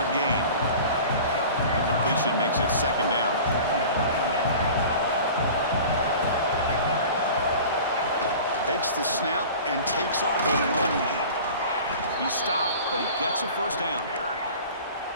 gain. The completion makes it 2nd down. Takes the snap and takes off on the run. He's stopped, but he gets a 1st down.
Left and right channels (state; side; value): inverted; both; correlation -0.40